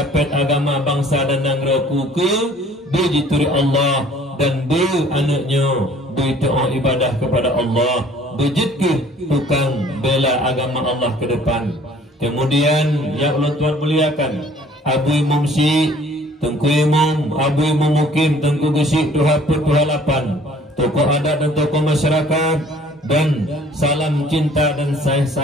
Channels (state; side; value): normal; both; correlation 0.54